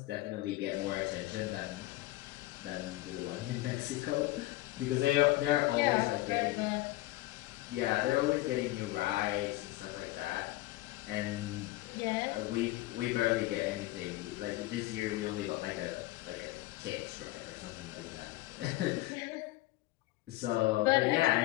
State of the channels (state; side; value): quieter; right; 18.6 dB